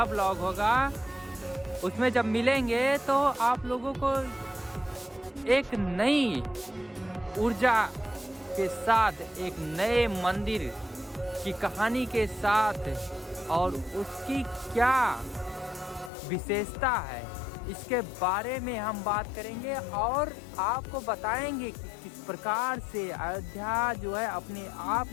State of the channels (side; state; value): right; drops out; at 16.1 s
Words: ब्लॉग होगा उसमें जब मिलेंगे तो आप लोगों को एक नई ऊर्जा के साथ एक नए मंदिर की कहानी के साथ और उसकी क्या विशेषता है इसके बारे में हम बात करेंगे और आपको बताएंगे कि किस प्रकार से अयोध्या जो है अपने आप